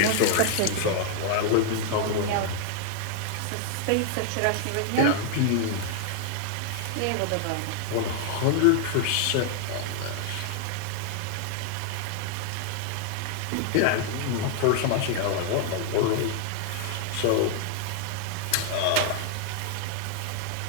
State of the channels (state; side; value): different; both; correlation 0.00